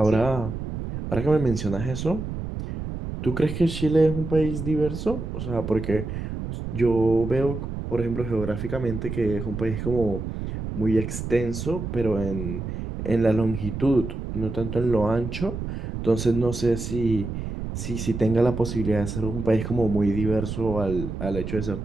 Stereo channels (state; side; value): noise; right; rumble, 6 dB below the sound